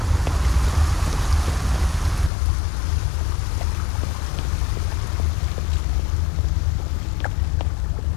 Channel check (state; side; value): drops out; right; at 2.3 s